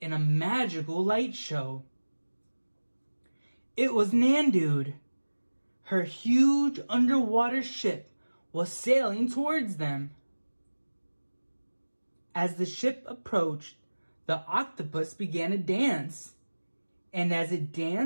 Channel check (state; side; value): inverted; both; correlation -1.00